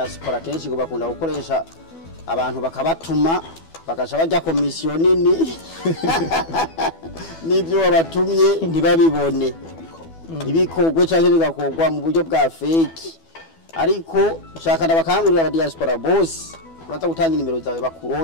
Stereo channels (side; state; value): right; late; 12 ms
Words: kenshi ngo bakunda gukoresha abantu bakabatuma bakaca bajya komisiyo nini nibyo wabatumye ntibabibone, ntibikogwe cyangwa bigakogwa mu buryo bwa fake. Ariko nshaka ndabakangurira aba diaspora boss uraza gutanga nimero zawe